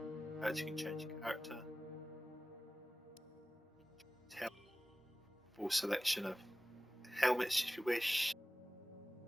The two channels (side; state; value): both; normal; correlation 0.96